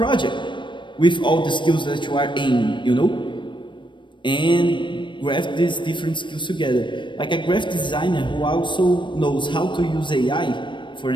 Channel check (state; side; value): late; right; 0.23 ms